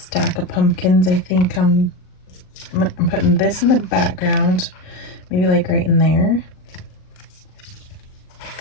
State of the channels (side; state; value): right; late; 38 ms